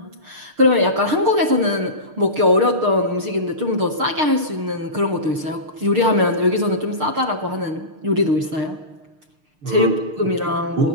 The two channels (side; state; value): left; late; 6.6 ms